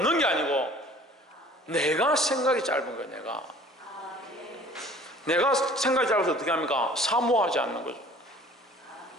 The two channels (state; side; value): normal; both; correlation 0.50